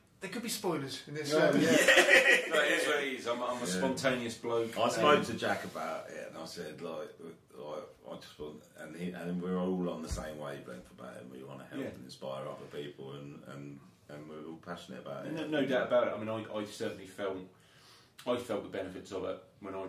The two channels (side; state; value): both; identical; correlation 1.00